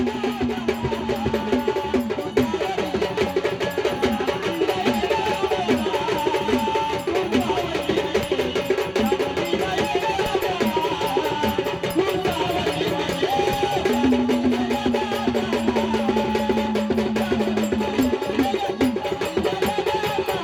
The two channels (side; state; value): both; identical; correlation 1.00